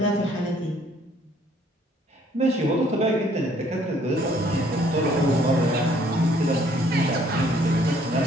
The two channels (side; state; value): both; normal; correlation 0.62